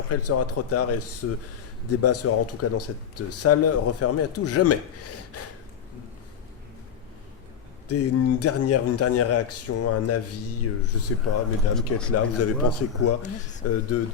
il sera trop tard et ce débat sera en tout cas dans cette salle refermé à tout jamais. Une dernière réaction, un avis, je sais pas, mesdames qui êtes là, vous avez pensé quoi de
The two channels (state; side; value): quieter; right; 7.7 dB